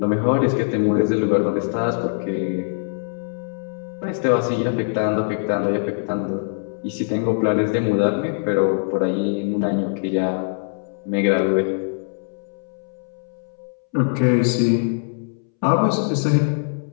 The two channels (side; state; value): right; silent; 64 dB below the other